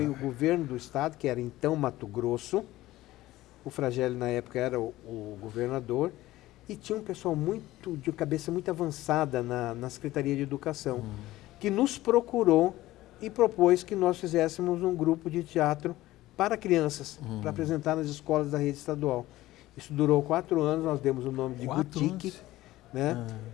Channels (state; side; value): quieter; right; 16.6 dB